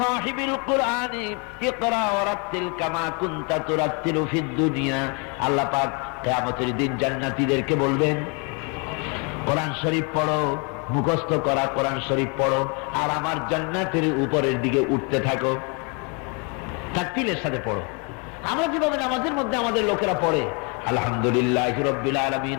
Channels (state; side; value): quieter; right; 33.7 dB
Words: কুরআনি ইকরা ওয়ারাত্তিল কামা কুনতা তুরাত্তিলু ফিদ দুনিয়া। আল্লাহ পাক কিয়ামতের দিন জান্নাতীদেরকে বলবেন, কোরআন শরীফ পড়ো, মুখস্থ করা কোরআন শরীফ পড়ো, আর আমার জান্নাতের উপরের দিকে উঠতে থাকো, তাকতিলের সাথে পড়ো। আমরা যেভাবে নামাজের মধ্যে আমাদের লোকেরা পড়ে, আলহামদুলিল্লাহি রাব্বিল আলামিন